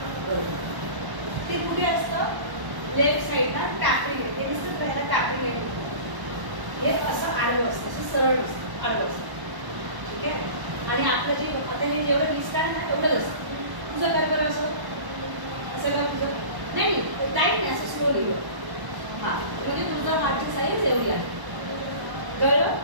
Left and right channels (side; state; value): left; late; 1.1 ms